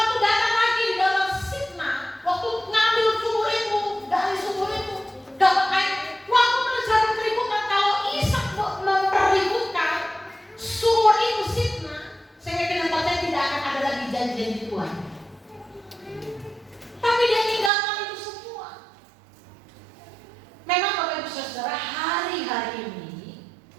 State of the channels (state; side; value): drops out; left; at 17.7 s